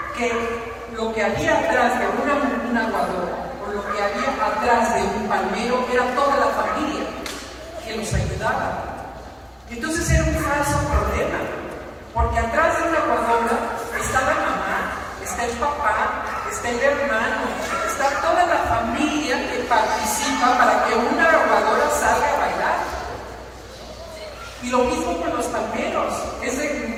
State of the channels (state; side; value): identical; both; correlation 1.00